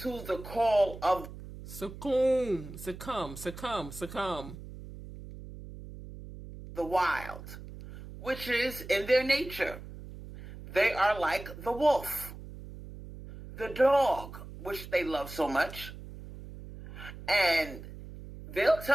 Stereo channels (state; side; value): noise; right; hum, 13 dB below the sound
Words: the call of succumb the wild, which is in their nature. They are like the wolf, the dog, which they love so much, and they'll